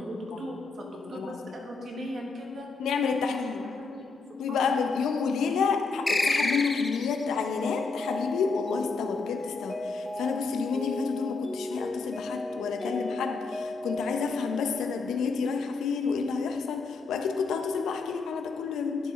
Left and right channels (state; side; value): quieter; right; 4.3 dB